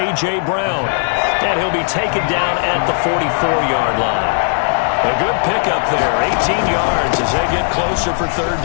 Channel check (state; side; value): silent; right; digital silence